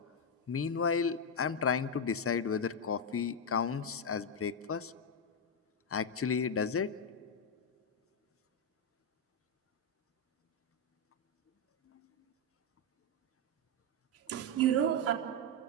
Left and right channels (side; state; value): both; normal; correlation 0.02